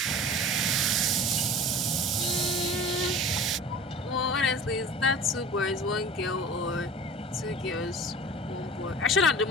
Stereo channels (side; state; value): both; normal; correlation 0.39